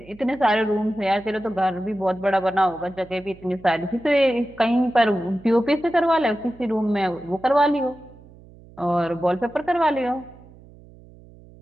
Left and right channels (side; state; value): right; noise; hum, 23 dB below the sound